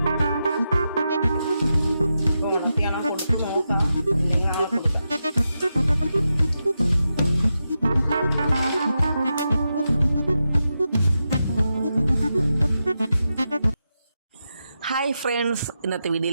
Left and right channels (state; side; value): inverted; both; correlation -0.88